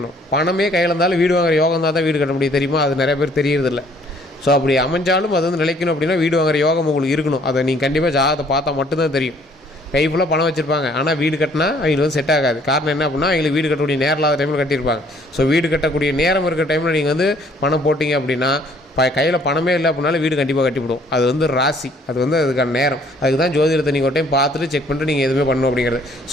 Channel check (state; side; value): normal; both; correlation 0.60